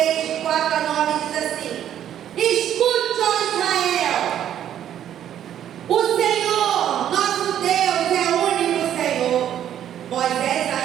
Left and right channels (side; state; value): left; quieter; 10.5 dB